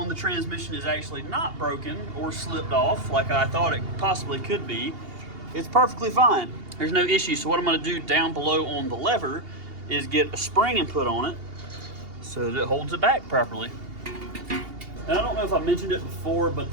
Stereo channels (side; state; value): left; late; 2.8 ms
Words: the transmission is actually not broken or slipped off like I thought it possibly could be. It's perfectly fine. There's no issue. So what I'm going to do down below on the lever is get a spring and put on it so that it holds it back properly. And I don't know if I mentioned it before, but